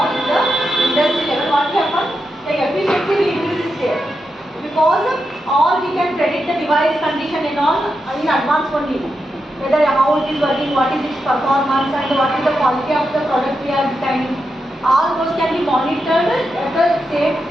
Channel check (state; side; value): normal; both; correlation 0.86